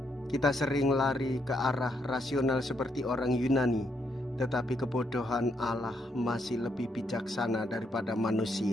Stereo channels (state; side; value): normal; both; correlation 0.77